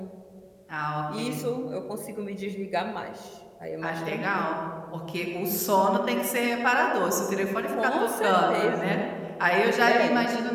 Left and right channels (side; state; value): both; identical; correlation 1.00